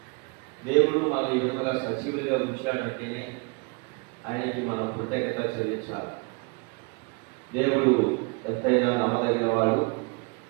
దేవుడు మనం ఈ విధంగా సజీవులుగా ఉంచాడంటేనే ఆయనకి మనం కృతజ్ఞత చెల్లించాలి. దేవుడు ఎంతైనా నమ్మదగిన వాడు,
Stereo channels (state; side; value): quieter; left; 30.9 dB